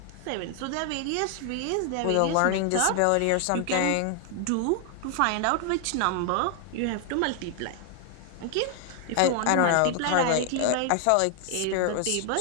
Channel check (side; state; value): both; different; correlation 0.00